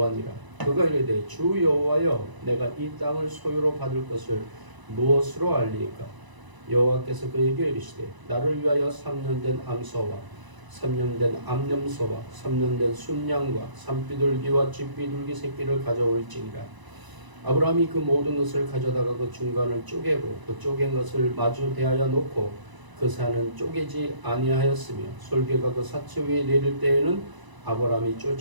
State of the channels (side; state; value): left; late; 1.0 ms